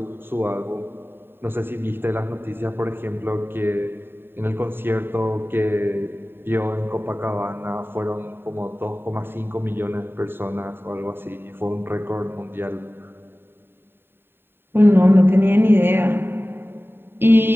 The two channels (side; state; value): left; late; 0.11 ms